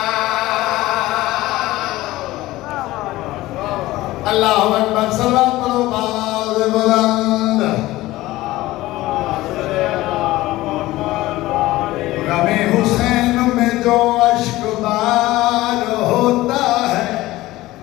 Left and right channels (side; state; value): right; quieter; 17.6 dB